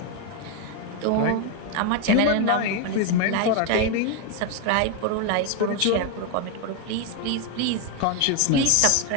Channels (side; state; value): both; different; correlation 0.01